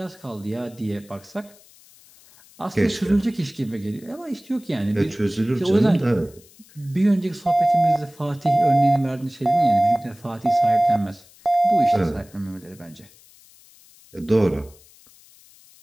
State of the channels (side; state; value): left; noise; hiss, 26 dB below the sound